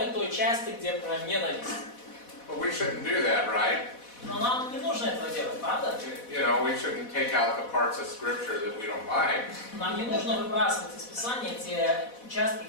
той части, где про ненависть. But we shouldn't do that, right? Но нам не нужно этого делать, правда? You know, we shouldn't take out the parts of Scripture that we don't like. Нам не нужно выбрасывать из Писания те участки,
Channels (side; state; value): right; late; 4.1 ms